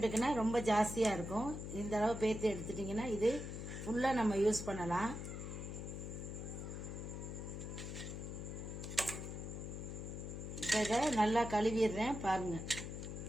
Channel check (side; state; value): left; noise; hum, 6 dB below the sound